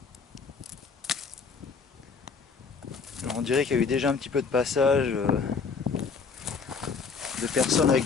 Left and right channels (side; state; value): right; quieter; 5.2 dB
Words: Alors, on dirait qu'il y a eu déjà un petit peu de passage de personnes avec